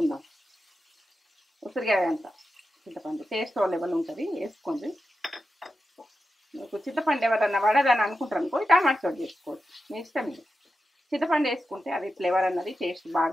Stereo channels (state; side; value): normal; both; correlation 0.90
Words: ఉసిరికాయ అంత చింతపండు టేస్ట్ లెవెల్ ఉంటుంది, వేసుకోండి. మీకు చింతపండు ఎవరన్నా పడదని అనుకుంటారు అనుకో టమాటో చేసుకోవచ్చు, మీ ఇష్టం. ఇది చింతపండు వేసుకుంటే అది ఫ్లేవర్ అన్నది టేస్ట్ బాగా